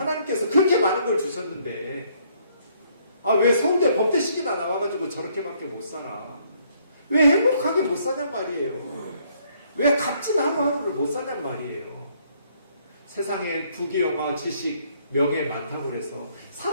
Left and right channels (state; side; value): inverted; both; correlation -0.67